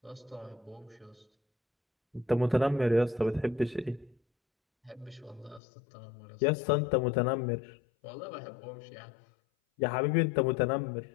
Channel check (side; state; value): right; drops out; at 5.6 s